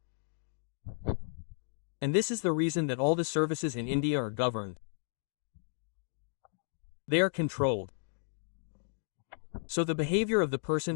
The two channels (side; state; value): right; silent; digital silence